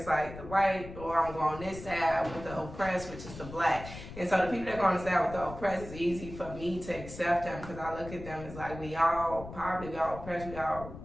like the white, or I'm going on this side with the oppressed, which is the black. And so the people that go on the side with the oppressed, it's easy for me to accept them, because I look at them as like, we all poverty, we all oppressed, we all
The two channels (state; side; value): noise; left; rumble, 12 dB below the sound